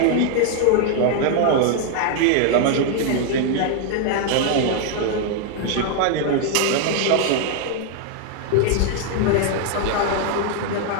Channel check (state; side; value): different; both; correlation 0.00